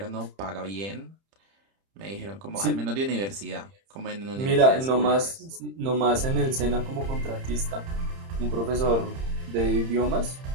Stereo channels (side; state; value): left; late; 30 ms